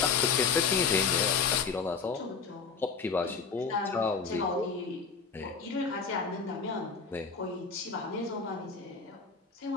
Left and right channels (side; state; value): right; quieter; 5.4 dB